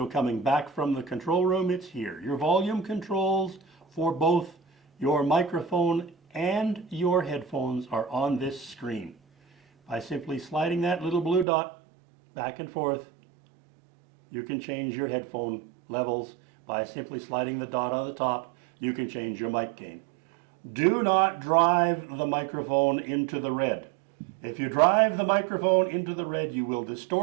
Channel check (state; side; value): drops out; left; at 11.5 s